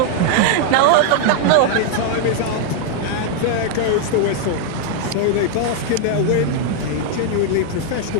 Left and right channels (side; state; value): both; different; correlation 0.00